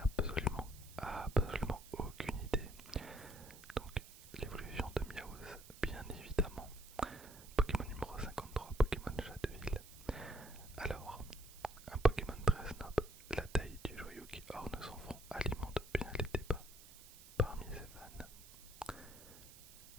absolument aucune idée. Donc l'évolution de Miaouz, bien évidemment. Pokémon numéro 53, Pokémon Chat de Ville. Alors, un Pokémon très snob, la taille du joyau qui orne son front alimente bien les débats parmi ses fans.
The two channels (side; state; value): right; noise; hiss, 18 dB below the sound